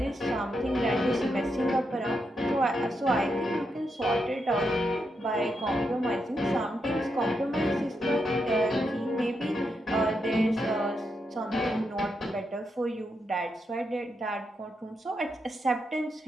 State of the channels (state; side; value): normal; both; correlation 0.83